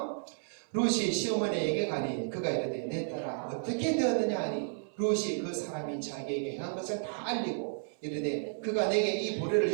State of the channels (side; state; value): left; silent; 56 dB below the other